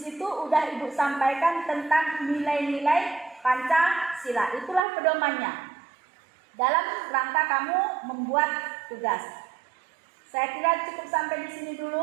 udah Ibu sampaikan tentang nilai-nilai Pancasila. Itulah pedomannya dalam rangka kamu membuat tugas. Saya kira cukup sampai di sini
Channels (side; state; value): left; drops out; at 4.8 s